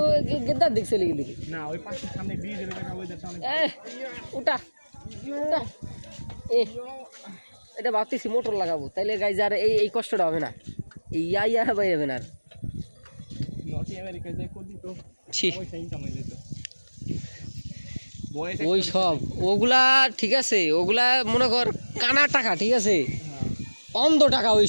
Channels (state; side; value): inverted; both; correlation -1.00